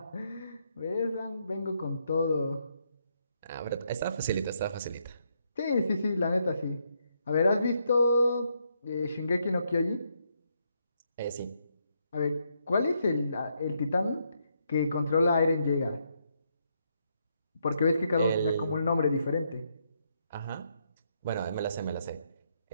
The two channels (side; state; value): both; inverted; correlation -0.77